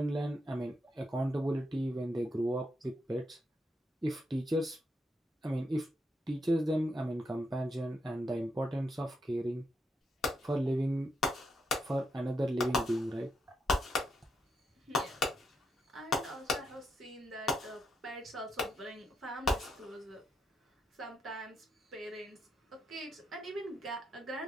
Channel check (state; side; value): normal; both; correlation 0.81